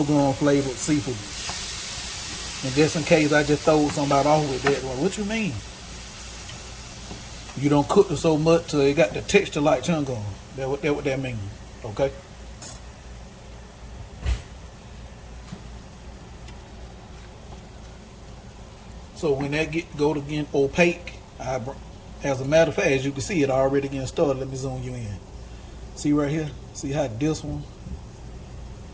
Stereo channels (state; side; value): identical; both; correlation 1.00